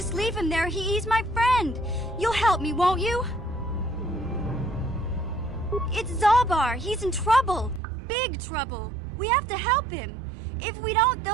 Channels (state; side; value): drops out; left; at 7.8 s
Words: leave him there. He's my friend. You'll help me, won't you? It's Zalbar. He's in trouble. Big trouble. We have to help him. If we don't,